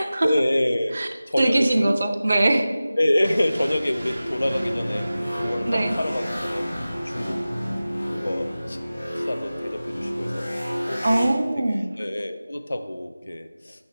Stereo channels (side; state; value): both; inverted; correlation -0.96